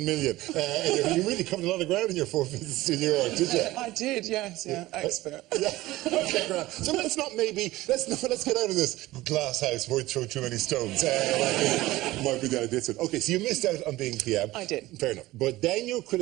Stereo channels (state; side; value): quieter; left; 17.8 dB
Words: million? You really covered a lot of ground in your 4 visits to New York, did you? I did, yes, expert. Yeah. Okay, great. So let's get out of this glass house where we throw too many stones. Might be down this one. Okay, so you missed out on being PM. I did. Fair enough. But then you're